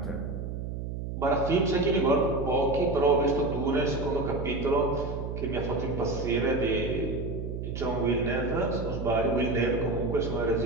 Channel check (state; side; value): noise; right; hum, 5 dB below the sound